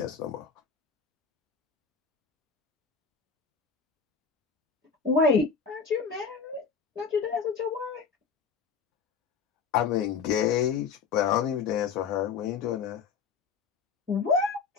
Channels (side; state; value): right; quieter; 5.7 dB